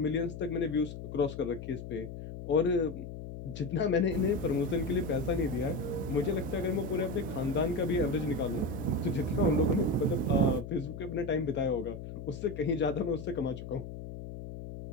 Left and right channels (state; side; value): noise; left; hum, 10 dB below the sound